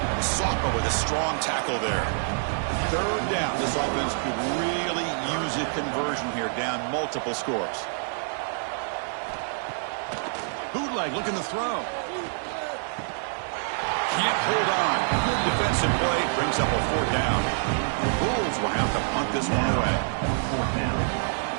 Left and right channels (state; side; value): silent; left; digital silence